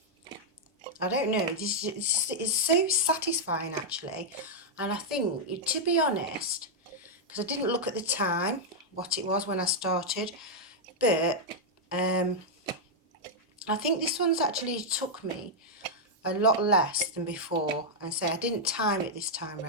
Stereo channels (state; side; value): normal; both; correlation -0.04